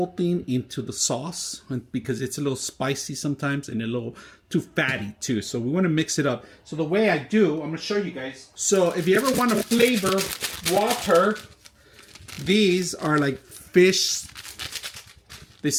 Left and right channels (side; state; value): both; identical; correlation 1.00